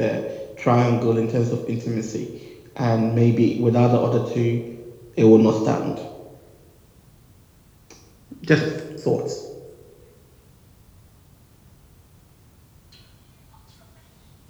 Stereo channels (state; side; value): identical; both; correlation 1.00